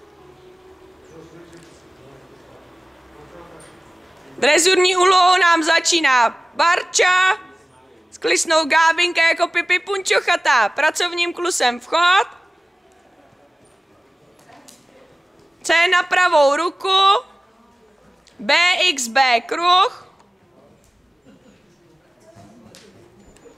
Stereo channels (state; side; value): normal; both; correlation 0.97